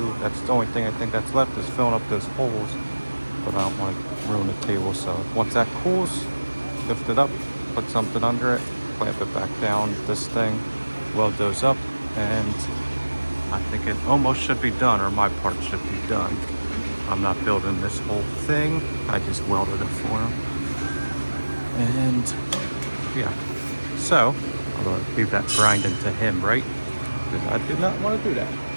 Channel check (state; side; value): inverted; both; correlation -1.00